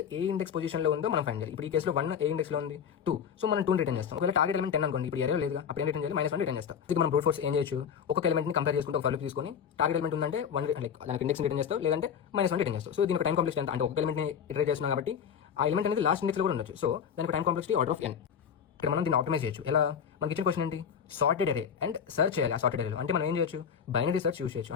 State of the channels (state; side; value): quieter; right; 7.6 dB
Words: ఏ ఇండెక్స్ పొజిషన్ లో ఉందో మనం ఫైండ్ చేయాలి. ఇప్పుడు ఈ కేసులో 1 ఏ ఇండెక్స్ లో ఉంది, 2. సో మనం 2 రిటర్న్ చేస్తాం. ఒకవేళ టార్గెట్ ఎలిమెంట్ 10 అనుకోండి, ఇప్పుడు అరే లేదు, అప్పుడు ఏం రిటర్న్ చేయాలి? -1 రిటర్న్ చేస్తాం. ఇది మనం బ్రూట్ ఫోర్స్ ఏం చేయొచ్చు, ఒక్కొక్క ఎలిమెంట్ ని కంపేర్ చేసుకుంటే ఒక ఫర్ తీసుకొని టార్గెట్ ఎలిమెంట్ ఉందంటే 1 దానికి ఇండెక్స్ రిటర్న్ చేస్తాం, లేదంటే -1 రిటర్న్ చేస్తాం. సో దీని టైం కాంప్లెక్స్ ఎంత అంటే ఒక ఎలిమెంట్ ని ఇటరేట్ చేస్తున్నాం కాబట్టి ఆ ఎలిమెంట్ అనేది లాస్ట్ ఇండెక్స్ లో కూడా ఉండొచ్చు. సో దానికి time complexity order of n. ఇక్కడ మనం దీన్ని ఆప్టిమైజ్ చేయొచ్చు. ఎలా? మనకి ఇచ్చిన క్వశ్చన్ ఏంటి? సార్టెడ్ అరే అండ్ సర్చ్ చేయాలి. ఆ సార్టెడ్ అరేలో అంటే మనం ఏం చేయొచ్చు? బైనరీ సర్చ్ యూస్ చేయొచ్చు.